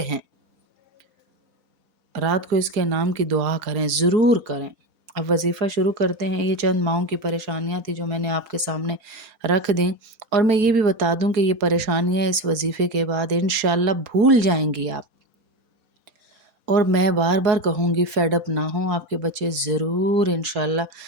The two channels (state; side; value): late; left; 4.4 ms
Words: ہیں۔ رات کو اس کے نام کی دعا کریں، ضرور کریں۔ اب وظیفہ شروع کرتے ہیں، یہ چند ماہوں کی پریشانیاں تھی جو میں نے آپ کے سامنے رکھ دیں، اور میں یہ بھی بتا دوں کہ یہ پریشانیاں اس وظیفے کے بعد انشاءاللہ بھول جائیں گی آپ، اور میں بار بار کہوں گی فیڈ اپ نہ ہوں، آپ کے بچے ضرور انشاءاللہ